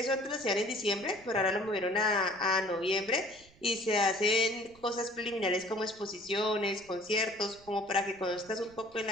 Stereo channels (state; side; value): noise; right; rumble, 27 dB below the sound